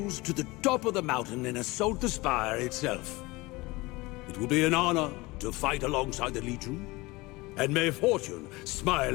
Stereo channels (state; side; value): quieter; right; 22.4 dB